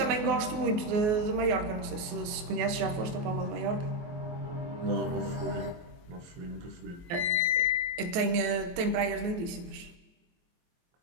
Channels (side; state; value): left; late; 23 ms